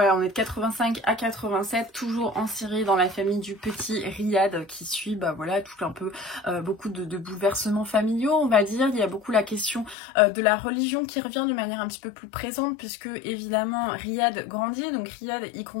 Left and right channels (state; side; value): drops out; right; at 10.0 s